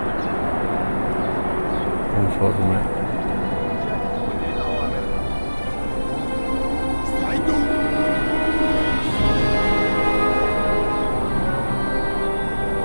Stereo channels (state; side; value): inverted; both; correlation -1.00